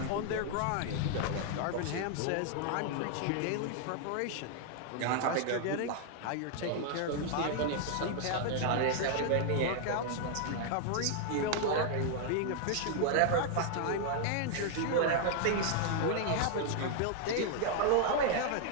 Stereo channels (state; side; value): different; both; correlation 0.00